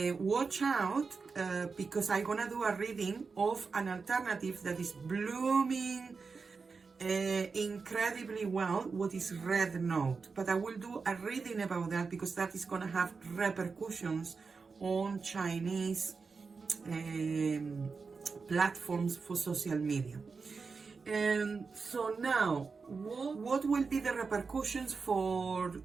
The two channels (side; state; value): left; quieter; 4.8 dB